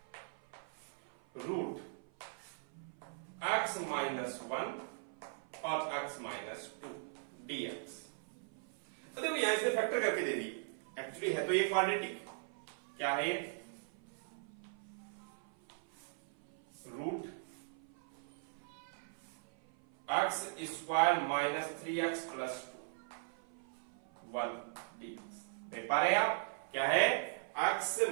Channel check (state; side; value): silent; left; 51 dB below the other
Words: - 1 और x - 2 dx। तो देखो यहां से फैक्टर करके दे दी, एक्चुअली है तो ये क्वाड्रेटिक, क्या है, (x² - 3x + 1 dx। देख पा रहे हैं आप, क्या है, x